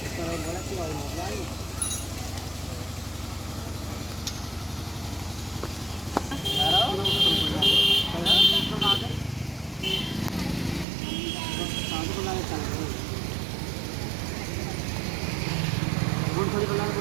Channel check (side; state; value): left; drops out; at 10.9 s